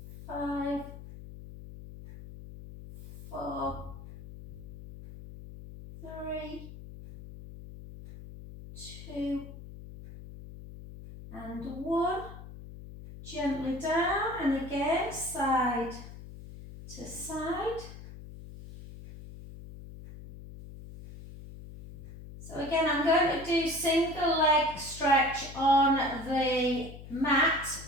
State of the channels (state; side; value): noise; left; hum, 14 dB below the sound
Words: 5, 4, 3, 2, and 1. Gently down, and again, side to side. So again, I'm going to do single leg stretch on the mat